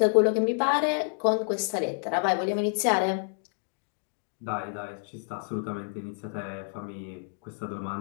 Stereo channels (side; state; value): right; silent; 59 dB below the other